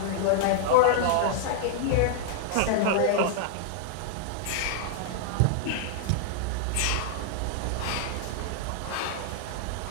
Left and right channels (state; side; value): different; both; correlation -0.01